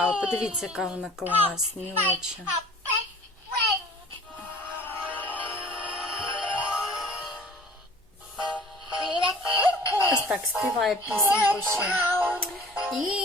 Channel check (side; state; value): both; normal; correlation 0.47